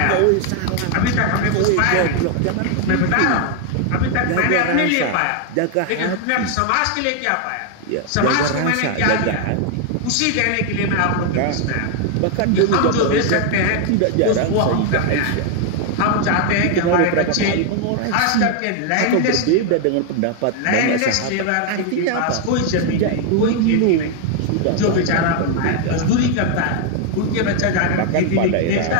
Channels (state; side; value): different; both; correlation 0.00